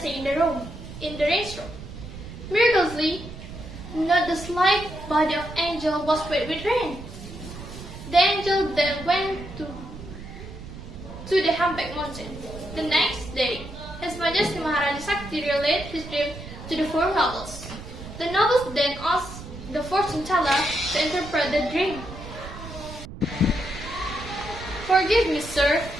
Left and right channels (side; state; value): right; noise; rumble, 12 dB below the sound